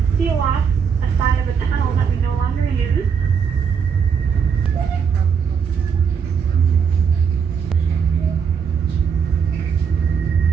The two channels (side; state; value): left; quieter; 6.6 dB